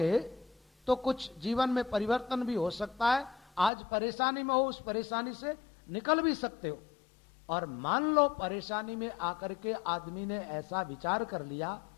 तो कुछ जीवन में परिवर्तन भी हो सकता है। आज परेशानी में हो, उस परेशानी से निकल भी सकते हो। और मान लो परेशानी में आकर के आदमी ने ऐसा विचार कर लिया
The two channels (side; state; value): right; drops out; at 3.7 s